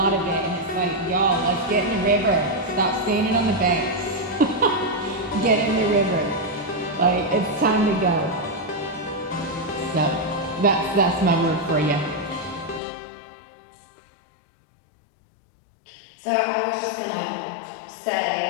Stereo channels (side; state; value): right; drops out; at 12.8 s